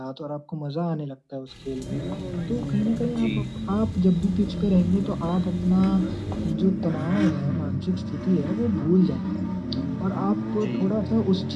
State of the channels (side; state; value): both; identical; correlation 1.00